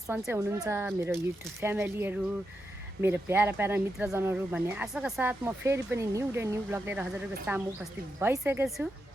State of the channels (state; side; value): normal; both; correlation 0.86